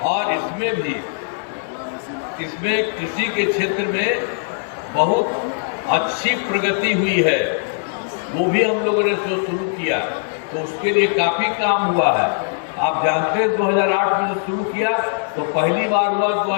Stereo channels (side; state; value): right; silent; digital silence